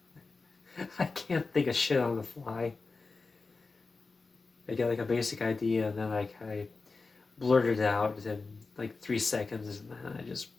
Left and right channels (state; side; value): quieter; right; 4.0 dB